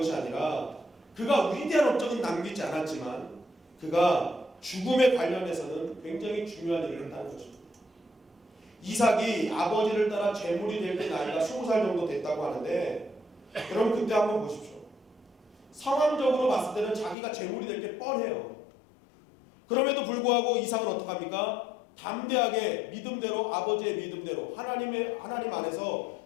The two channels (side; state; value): right; drops out; at 17.2 s